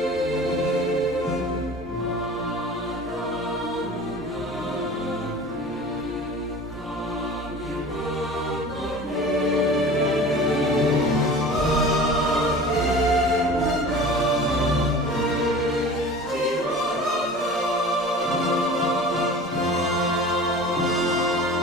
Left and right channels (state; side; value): normal; both; correlation 0.39